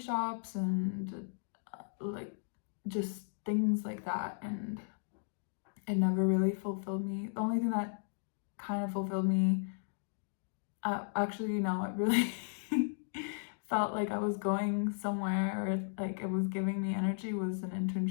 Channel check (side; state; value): right; silent; digital silence